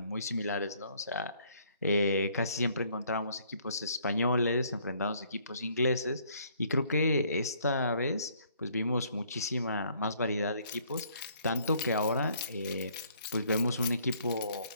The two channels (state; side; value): inverted; both; correlation -0.64